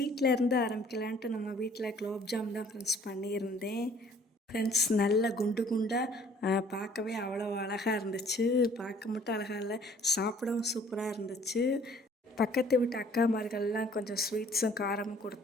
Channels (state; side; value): normal; both; correlation 0.56